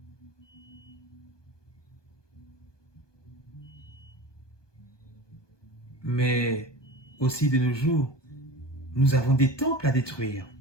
Mais aussi de nos jours, nous avons des temples à détruire.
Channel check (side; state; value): right; late; 1.2 ms